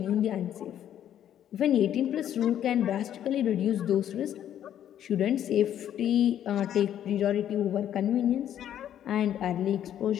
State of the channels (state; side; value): quieter; right; 10.6 dB